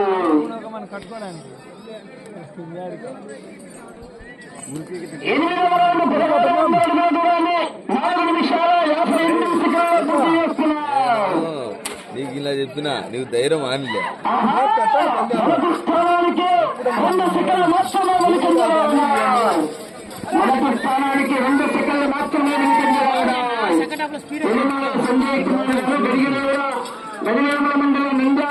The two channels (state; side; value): identical; both; correlation 1.00